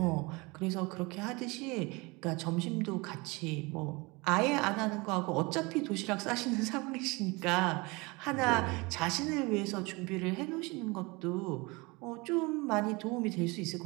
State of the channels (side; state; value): left; quieter; 25.5 dB